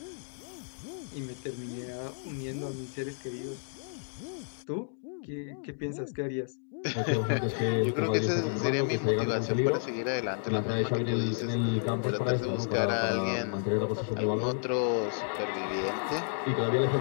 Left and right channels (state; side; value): silent; right; digital silence